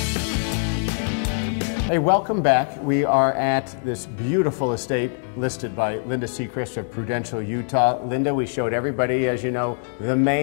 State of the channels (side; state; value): right; silent; 63 dB below the other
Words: Hey, welcome back. We are at this beautiful estate listed by Linda Seacrest of Prudential, Utah. Linda, we showed everybody, as you know, the